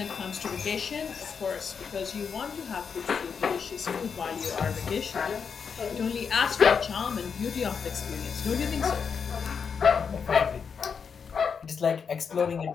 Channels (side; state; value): right; quieter; 6.3 dB